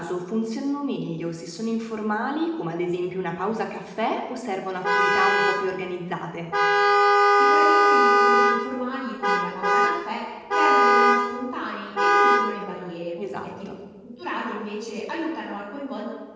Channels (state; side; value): identical; both; correlation 1.00